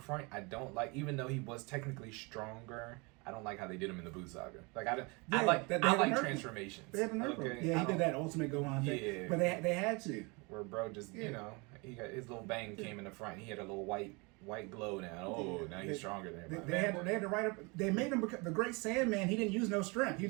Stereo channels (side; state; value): left; quieter; 28.7 dB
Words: front. I don't like, even though he was technically stronger, I don't like how they did him in the Buu saga. Like I like transformations. They had the nerf. Okay? Yeah, he did that ultimate Gohan thing. Yeah, but they had to. Where bro just he got his little bang came in the front. And he had a little white glow now. Oh, now he's stronger than everybody. They had to write up. They made him the Great Sandman. He didn't use no strength. He